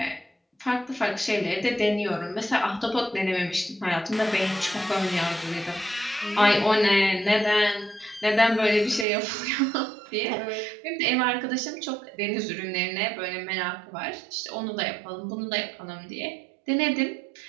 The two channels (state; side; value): drops out; left; at 9.1 s